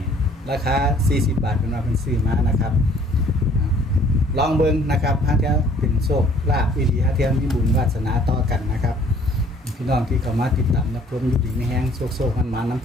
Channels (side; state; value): both; normal; correlation 0.57